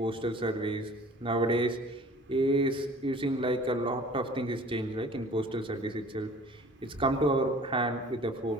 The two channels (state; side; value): normal; both; correlation 0.48